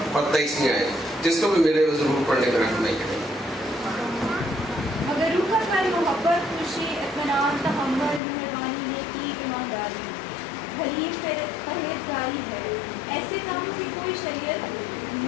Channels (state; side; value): drops out; right; at 8.2 s